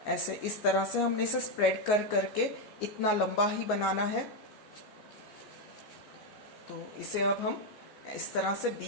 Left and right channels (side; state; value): right; late; 14 ms